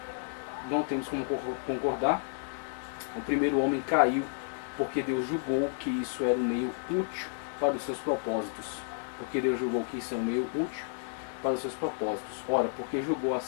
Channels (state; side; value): silent; right; 57 dB below the other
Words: não temos como concordar. O primeiro homem caiu porque Deus julgou que isso era um meio útil para os seus propósitos. Porque Deus julgou que isso é um meio útil para os seus propósitos. Ora, porque julgou